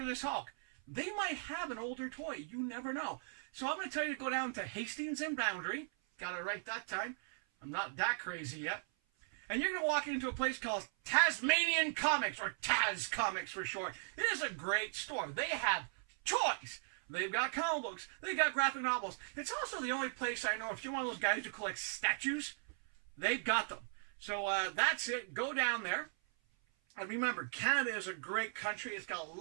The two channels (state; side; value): silent; left; 52 dB below the other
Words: this Hulk, they might have an older toy. You never know. So I'm going to tell you to go down to Hastings and Boundary. Got it right that time. I'm not that crazy yet. And you're going to walk into a place called Tasmanian Comics, or Taz Comics for short. It is a great store. They have toys. They've got comic books. They've got graphic novels. It's also the only place I know, if you're one of those guys who collect statues, they've got them. So that's it. Go down there. And remember, Canada is a great country. It's got a